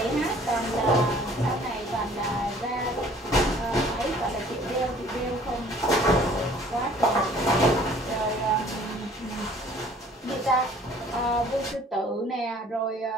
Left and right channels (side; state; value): both; normal; correlation 0.54